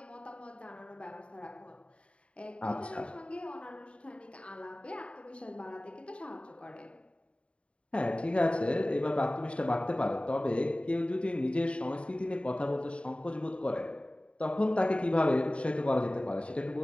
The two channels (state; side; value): late; right; 0.060 ms